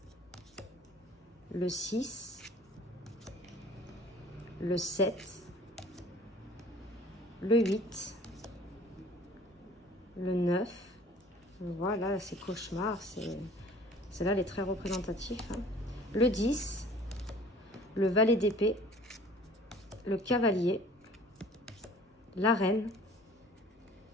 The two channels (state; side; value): normal; both; correlation 0.49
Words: Le 6. Le 7. Le 8. Le 9. Voilà, c'est cauchemar. Celle-là, elle est très représentative. Hein. Le 10. Le valet d'épée. Le cavalier. La reine.